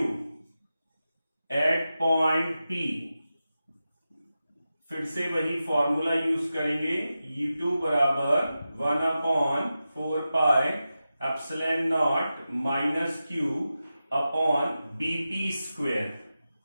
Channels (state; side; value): inverted; both; correlation -0.92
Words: at point P। फिर से वही फॉर्मूला यूज करेंगे, E2 बराबर 1/4πε0 - Q upon BP